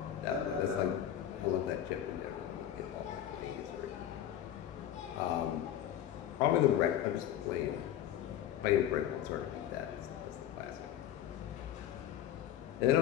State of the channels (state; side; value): quieter; right; 11.2 dB